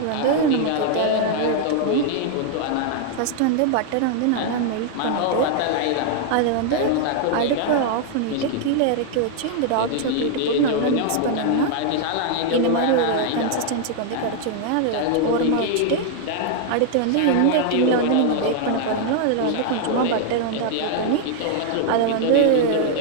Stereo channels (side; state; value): both; different; correlation 0.00